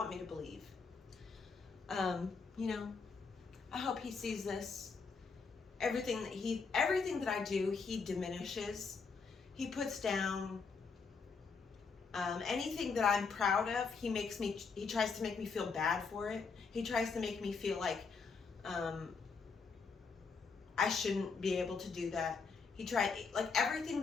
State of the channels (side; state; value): right; quieter; 5.0 dB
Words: me to believe. I hope he sees this. Everything that I do, he diminishes. He puts down. Anything that I'm proud of, he tries to make me feel bad for it. He tries to make me feel like I shouldn't be able to do that. He tried, like everything